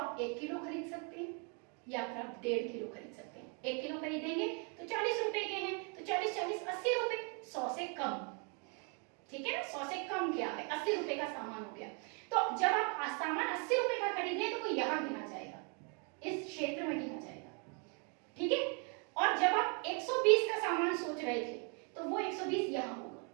1 किलो खरीद सकते हैं या फिर आप 1.5 किलो खरीद सकते हैं। 1 किलो खरीदेंगे तो 40 रुपए के हैं, तो 40 40 80 रुपए, 100 से कम, ठीक है ना, 100 से कम क्या है, 80 रुपए का सामान हो गया। तो जब आप सामान 80 रुपए का खरीदे, तो वो यहाँ गिना जाएगा, इस क्षेत्र में गिना जाएगा, ठीक है। और जब आप 120 का सामान सोच रहे थे, तो वो 120 यहाँ होगा,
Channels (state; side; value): quieter; left; 37.1 dB